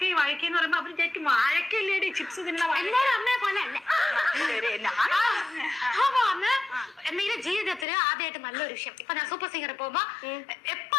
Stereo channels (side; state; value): right; drops out; at 7.9 s